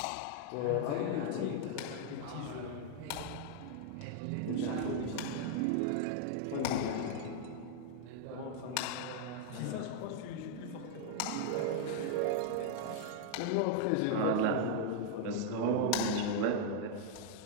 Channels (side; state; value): both; different; correlation 0.00